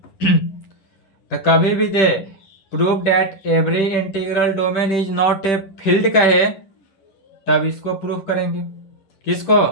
तो कभी भी they prove that every integral domain is not a field कहे तब इसको प्रूफ करेंगे। किसको?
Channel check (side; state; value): right; late; 10 ms